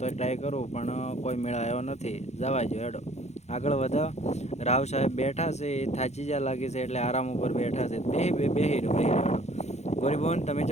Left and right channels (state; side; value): late; right; 0.32 ms